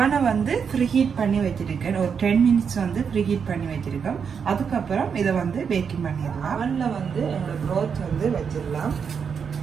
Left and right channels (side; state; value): left; quieter; 6.6 dB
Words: வந்து ப்ரீ ஹீட் பண்ணி வச்சிருக்கேன். ஒரு 10 மினிட்ஸ் வந்து ப்ரீ ஹீட் பண்ணி வச்சிருக்கேன். அதுக்கப்புறம் இதை வந்து பேக்கிங் பண்ணிடலாம். அவனில் வந்து என்னோட ப்ரோத் வந்து வச்சிடலாம்.